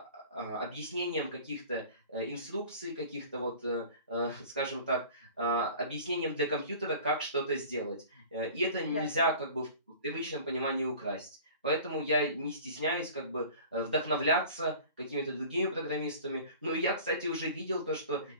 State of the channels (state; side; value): inverted; both; correlation -0.43